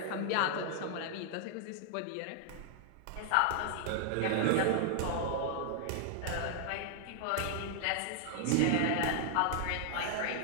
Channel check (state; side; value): different; both; correlation 0.00